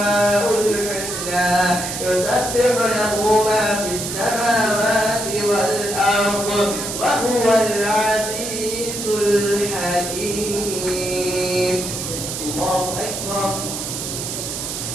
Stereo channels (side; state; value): right; noise; hiss, 5 dB below the sound